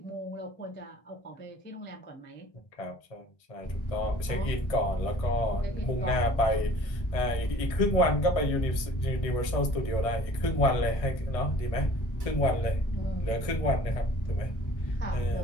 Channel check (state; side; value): late; right; 1.6 ms